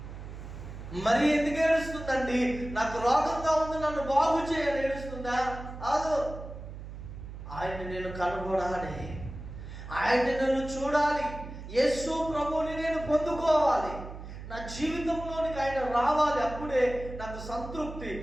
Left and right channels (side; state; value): right; noise; hum, 11 dB below the sound